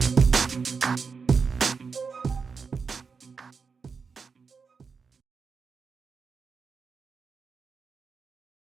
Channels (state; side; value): quieter; left; 5.2 dB